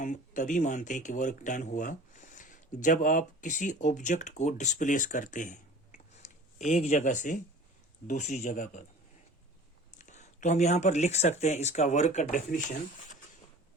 तभी मानते हैं कि वर्क डन हुआ जब आप किसी ऑब्जेक्ट को डिस्प्लेस करते हैं एक जगह से दूसरी जगह पर। तो हम यहाँ पर लिख सकते हैं इसका वर्क का definition:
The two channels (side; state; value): both; normal; correlation 0.43